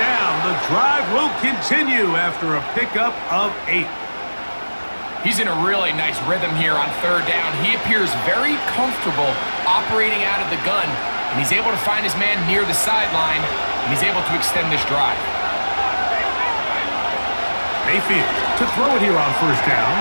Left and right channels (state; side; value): inverted; both; correlation -1.00